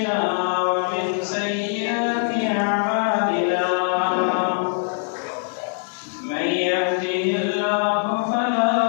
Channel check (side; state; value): right; silent; digital silence